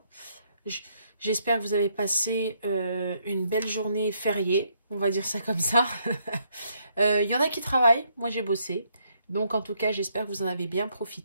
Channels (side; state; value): both; inverted; correlation -0.73